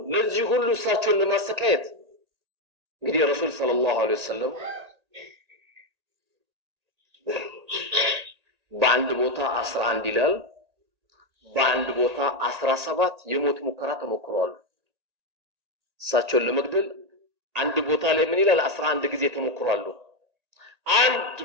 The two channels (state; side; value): late; left; 1.8 ms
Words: ለዚህ ሁሉ እሳቸውን ለማሰቃየት እንግዲህ ረሱል ሰለላሁ ዐለይሂ ወሰለም በአንድ ቦታ 11 ይላል፣ በአንድ ቦታ 17 የሞት ሙከራ ተሞክረዋል። እሳቸውን ለመግደል አንድ ቦታ ላይ ምን ይላል? 11 ጊዜ ተሞክሯል። አንድ